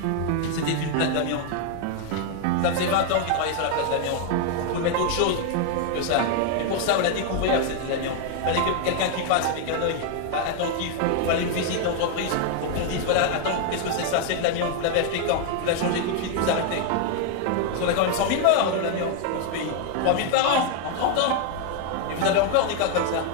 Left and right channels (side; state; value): both; different; correlation 0.00